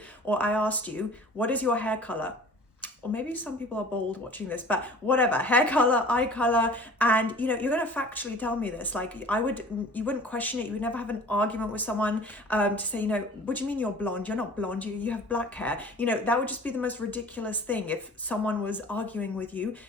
or I asked you, what is your hair color? Or maybe some people are bold watching this, but whatever, hair color, eye color, and you know, you're going to factually tell me this. Like you wouldn't question it. You would never have an argument with someone to say, you know, what do you mean you're blonde? You're not blonde, you have black hair. You know, that would just be the most ridiculous thing if someone was arguing with you.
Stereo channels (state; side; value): normal; both; correlation 0.45